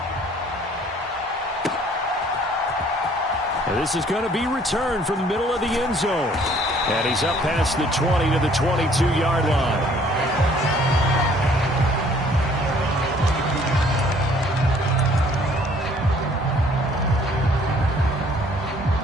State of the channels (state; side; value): normal; both; correlation 0.59